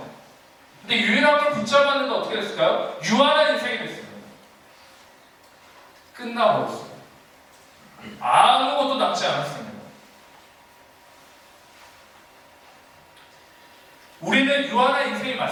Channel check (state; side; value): identical; both; correlation 1.00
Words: 근데 유일한 걸 붙잡았는데 어떻게 됐을까요? 유한한 인생이 됐습니다. 끝나버렸어요. 아무것도 남지 않았습니다. 우리는 유한한 인생이